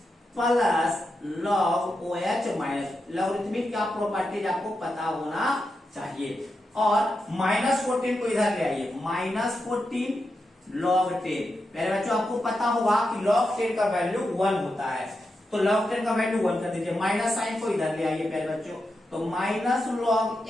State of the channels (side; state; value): both; normal; correlation 0.87